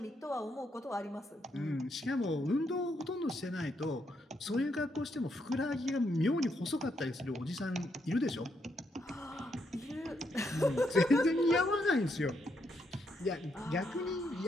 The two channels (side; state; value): both; normal; correlation 0.78